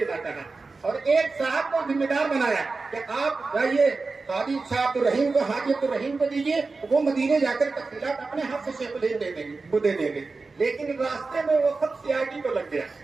چاہا اور ایک صاحب کو ذمہ دار بنایا کہ آپ جائیے قاضی شاہ عبدالرحیم کو، حاجی عبدالرحیم کو دیجیے، وہ مدینے جا کر تفصیلات اپنے ہاتھ سے شیخ الہند دے دیں گے۔ لیکن راستے میں وہ خط CID کو لگ گیا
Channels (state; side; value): quieter; left; 4.0 dB